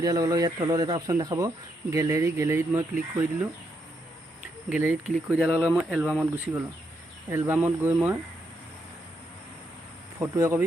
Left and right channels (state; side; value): normal; both; correlation 0.79